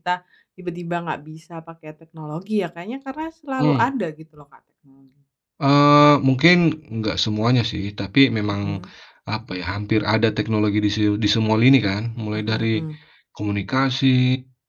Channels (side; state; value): both; identical; correlation 1.00